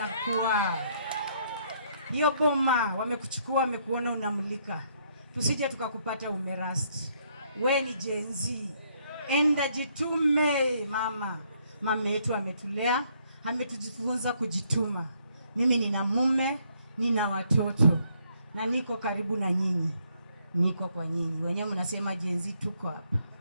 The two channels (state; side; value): inverted; both; correlation -0.70